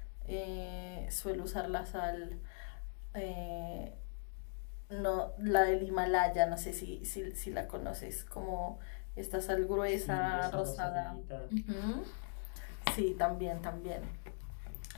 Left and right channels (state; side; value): silent; right; digital silence